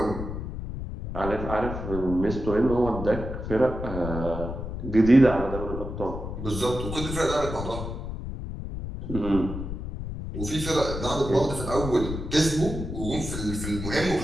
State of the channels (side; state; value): left; noise; rumble, 6 dB below the sound